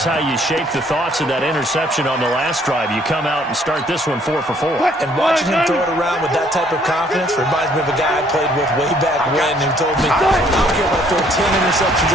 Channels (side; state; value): both; normal; correlation 0.63